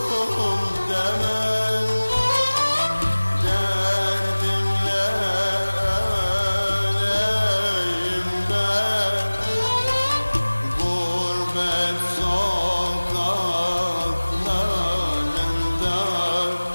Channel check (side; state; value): both; inverted; correlation -1.00